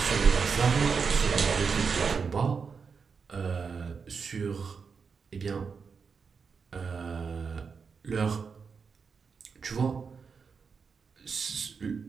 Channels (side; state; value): left; quieter; 5.6 dB